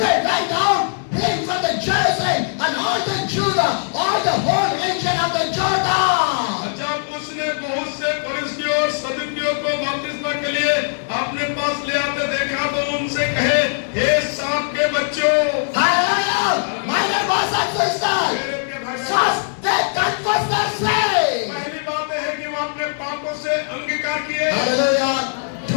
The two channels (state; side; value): silent; right; digital silence